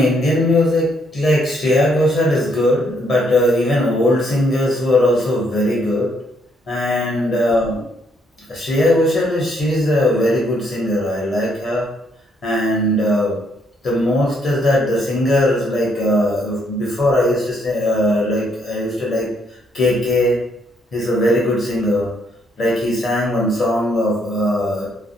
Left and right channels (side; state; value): both; normal; correlation 0.72